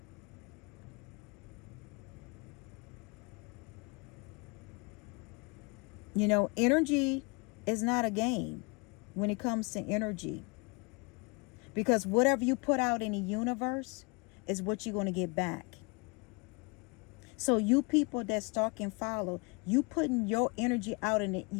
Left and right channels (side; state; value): right; quieter; 30.5 dB